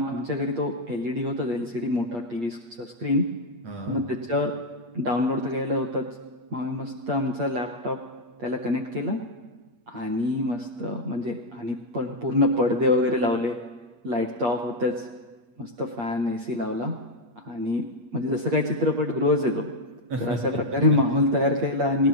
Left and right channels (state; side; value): late; left; 8.5 ms